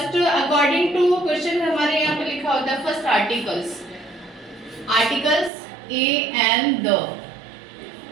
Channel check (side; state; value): left; drops out; at 5.5 s